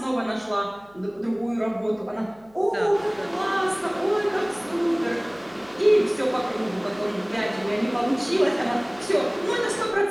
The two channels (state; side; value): noise; left; hum, 29 dB below the sound